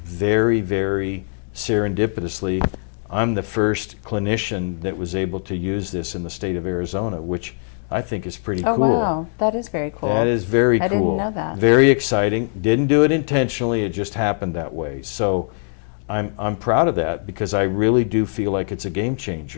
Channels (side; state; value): right; silent; digital silence